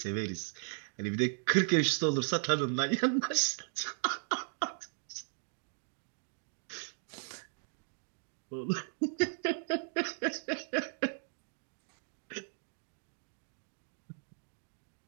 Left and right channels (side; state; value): left; silent; digital silence